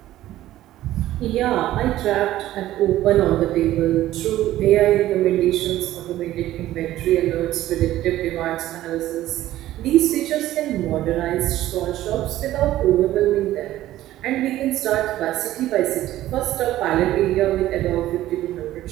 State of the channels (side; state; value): left; quieter; 14.3 dB